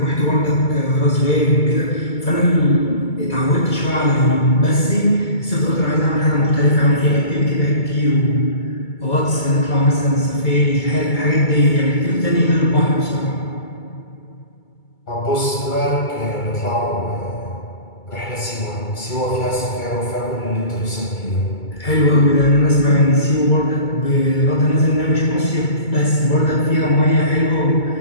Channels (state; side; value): late; right; 2.2 ms